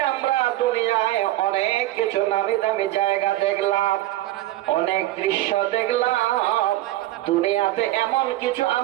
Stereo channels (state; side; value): quieter; left; 15.7 dB